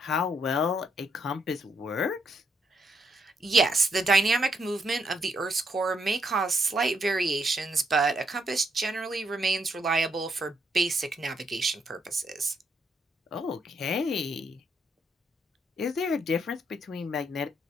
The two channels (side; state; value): both; normal; correlation 0.76